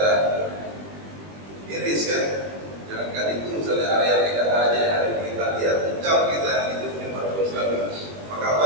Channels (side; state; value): left; late; 20 ms